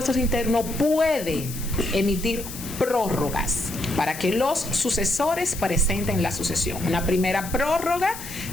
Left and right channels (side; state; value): left; noise; hiss, 11 dB below the sound